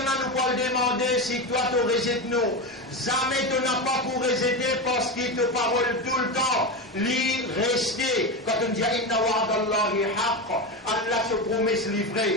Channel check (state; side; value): normal; both; correlation 0.18